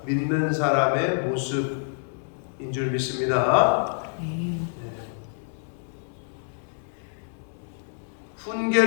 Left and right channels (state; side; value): silent; right; 60 dB below the other